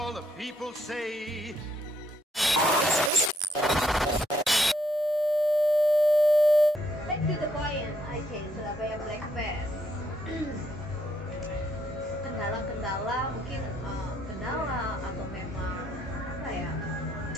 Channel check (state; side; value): normal; both; correlation 0.72